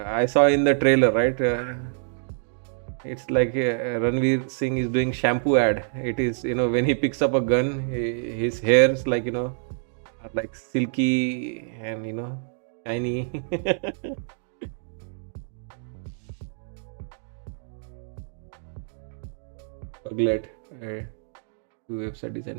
saw in the trailer, right? It's like Ranveer Singh is doing shampoo ad. It is when he picks up a gun, his hairs like are like silky and shiny. Puglet. Do website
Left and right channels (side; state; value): left; silent; digital silence